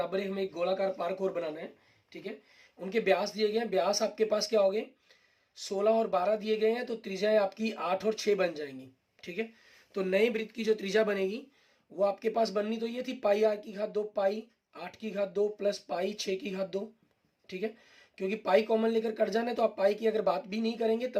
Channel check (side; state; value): both; identical; correlation 1.00